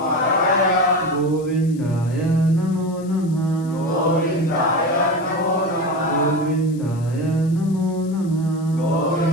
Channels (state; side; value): noise; left; hiss, 24 dB below the sound